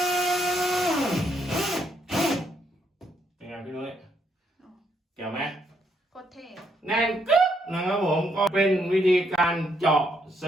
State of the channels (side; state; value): both; normal; correlation 0.75